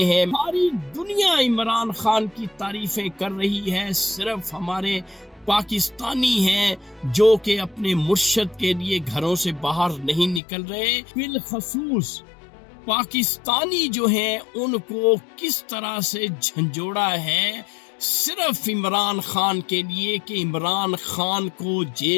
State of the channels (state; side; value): drops out; right; at 10.4 s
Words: ہیں۔ ساری دنیا عمران خان کی تعریفیں کر رہی ہے، صرف ہمارے پاکستانی ہیں جو کہ اپنے مرشد کے لیے گھروں سے باہر نہیں نکل رہے۔ بالخصوص پاکستانی جو ہیں ان کو کس طرح سے جھنجھوڑا ہے صرف عمران خان کے لیے کہ عمران خان کو